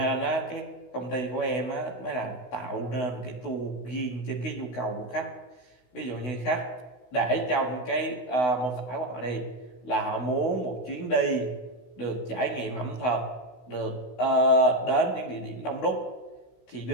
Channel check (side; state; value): right; late; 16 ms